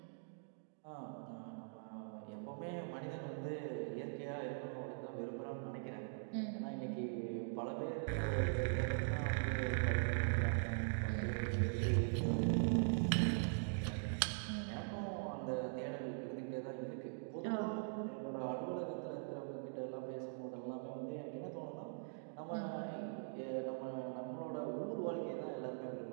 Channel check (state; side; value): silent; left; digital silence